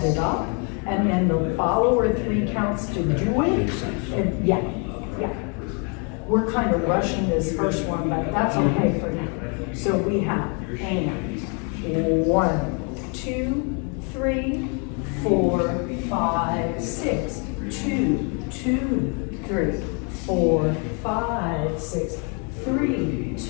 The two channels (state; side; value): quieter; right; 36.6 dB